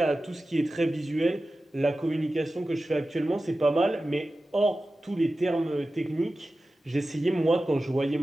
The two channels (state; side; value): normal; both; correlation 0.94